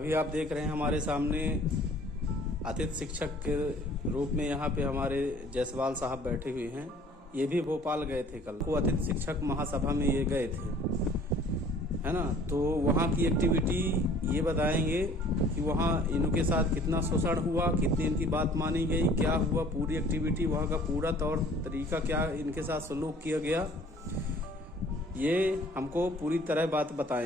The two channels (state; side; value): normal; both; correlation 0.53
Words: आप देख रहे हैं हमारे सामने अतिथि शिक्षक के रूप में यहाँ पे हमारे जायसवाल साहब बैठे हुए हैं। ये भी भोपाल गए थे कल, वो अतिथि शिक्षक महासभा में ये गए थे, है ना। तो वहाँ की एक्टिविटी ये बताएंगे कि वहाँ इनके साथ कितना शोषण हुआ, कितनी इनकी बात मानी गई, क्या हुआ, पूरी एक्टिविटी, वहाँ का पूरा तौर तरीका, क्या इनके साथ सलूक किया गया, ये हमको पूरी तरह बात